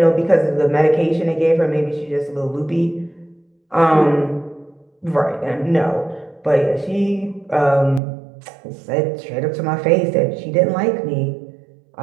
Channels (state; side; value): drops out; left; at 8.0 s